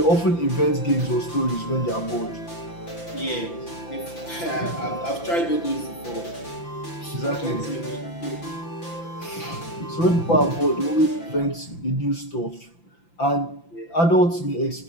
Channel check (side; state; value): right; late; 5.9 ms